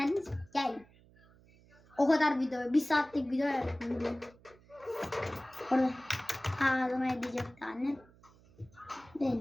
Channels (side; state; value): right; noise; hum, 27 dB below the sound